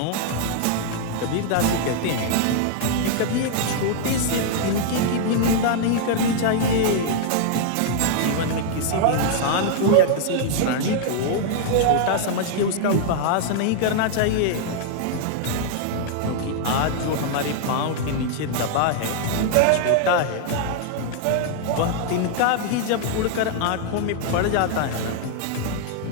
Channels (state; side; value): different; both; correlation -0.01